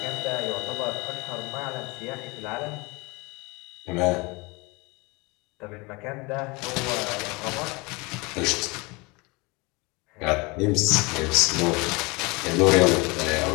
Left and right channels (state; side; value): quieter; right; 26.1 dB